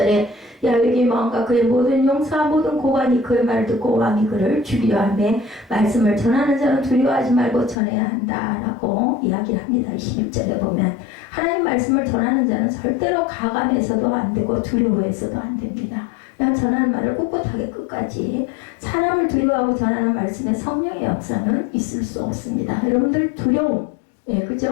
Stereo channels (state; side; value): drops out; right; at 7.8 s